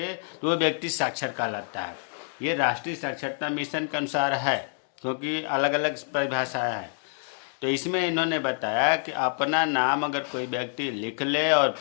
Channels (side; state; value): right; silent; 60 dB below the other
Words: तो वो व्यक्ति साक्षर कहलाता है। ये राष्ट्रीय साक्षरता मिशन के अनुसार है, क्योंकि अलग अलग परिभाषाएं हैं। तो इसमें इन्होंने बताया कि अपना नाम अगर कोई व्यक्ति लिख ले और